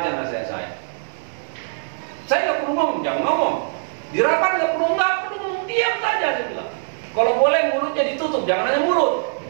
nasihat saya. Saya nggak perlu ngomong, jangan ngomong. Di rapat nggak perlu ngomong, diam saja saya bilang. Kalau boleh mulutnya ditutup, jangan hanya mulut.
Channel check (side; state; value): left; silent; digital silence